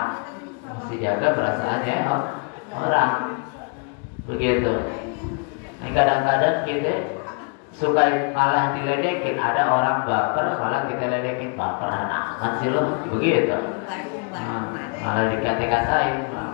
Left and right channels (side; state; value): right; quieter; 37.5 dB